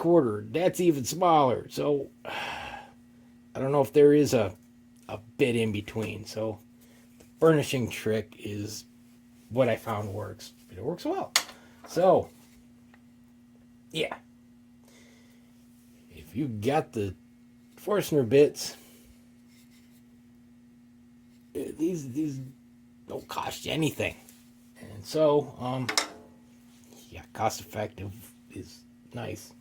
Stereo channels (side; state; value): both; identical; correlation 1.00